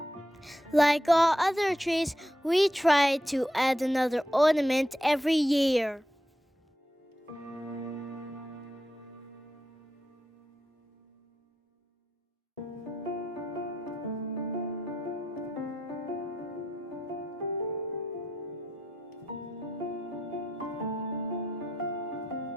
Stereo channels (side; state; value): both; normal; correlation 0.84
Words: Like all other trees, we try to add another ornament every year.